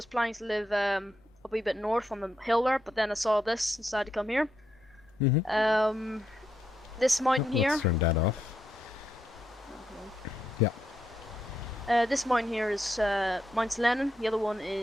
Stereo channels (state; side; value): normal; both; correlation 0.81